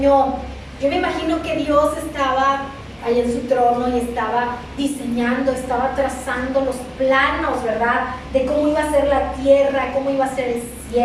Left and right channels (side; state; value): both; identical; correlation 1.00